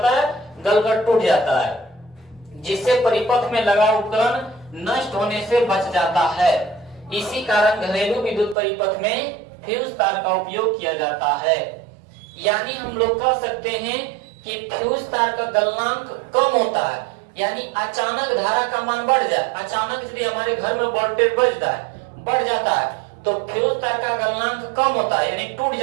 है, गलकर टूट जाता है, जिससे परिपथ में लगा उपकरण नष्ट होने से बच जाता है। इसी कारण घरेलू विद्युत परिपथ में फ्यूज तार का उपयोग किया जाता है। यानी हम लोग कह सकते हैं कि फ्यूज तार का गलनांक कम होता है। यानी अचानक धारा का मान बढ़ जाए, अचानक यदि हमारे घर में वोल्टेज बढ़ जाता है तो फ्यूज तार का गलनांक कम होता है, यानी टूट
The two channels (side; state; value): left; drops out; at 8.6 s